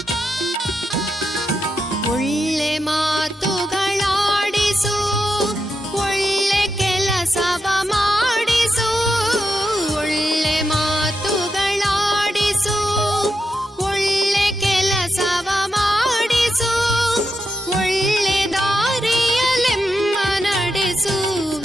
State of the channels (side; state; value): both; normal; correlation 0.86